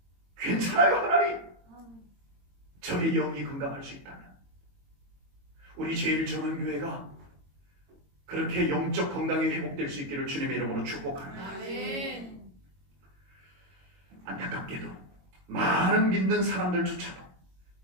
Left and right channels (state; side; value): late; left; 22 ms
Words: 괜찮아요 하나님. 저의 영이 건강할 수 있다면 우리 제일 좋은 교회가 그렇게 영적 건강이 회복될 수 있기를 주님의 이름으로 축복합니다. 안타깝게도 많은 믿는 사람들조차도